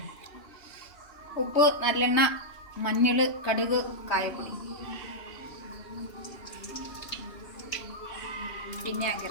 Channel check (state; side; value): late; right; 3.3 ms